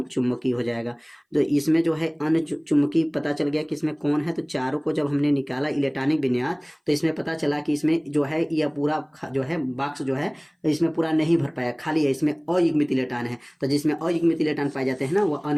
हो जाएगा। तो इसमें जो है अनुचुंबकीय पता चल गया कि इसमें कौन है। तो चारों को जब हमने निकाला इलेक्ट्रॉनिक विन्यास तो इसमें पता चला कि इसमें जो है यह पूरा जो है बॉक्स जो है इसमें पूरा नहीं भर पाया, खाली है, इसमें अयुग्मित इलेक्ट्रॉन है। तो जिसमें अयुग्मित इलेक्ट्रॉन पाए जाते हैं ना वो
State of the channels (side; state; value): both; identical; correlation 1.00